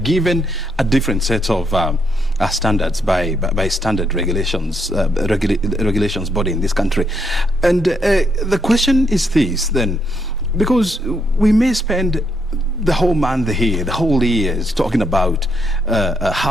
a different set of standards by standard regulations, regulations body in this country. And the question is this, then, because we may spend the whole month here, the whole years talking about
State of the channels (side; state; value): both; normal; correlation 0.76